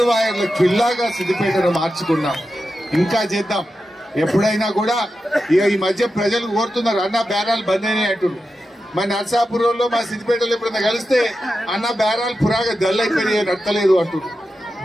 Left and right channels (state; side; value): normal; both; correlation 0.90